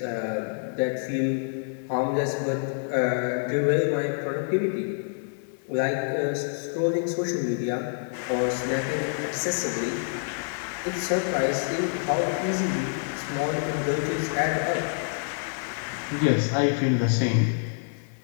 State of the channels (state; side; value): silent; right; digital silence